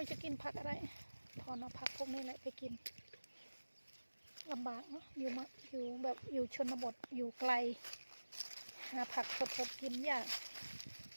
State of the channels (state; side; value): inverted; both; correlation -1.00